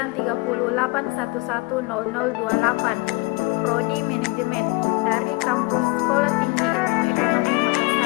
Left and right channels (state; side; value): quieter; right; 25.4 dB